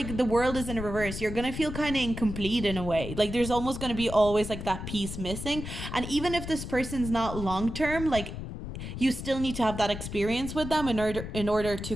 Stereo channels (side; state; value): left; noise; rumble, 8 dB below the sound